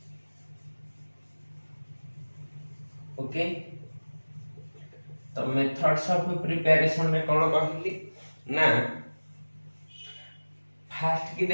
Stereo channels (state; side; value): inverted; both; correlation -1.00